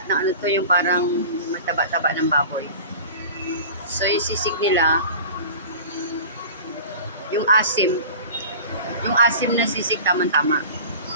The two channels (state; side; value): inverted; both; correlation -0.38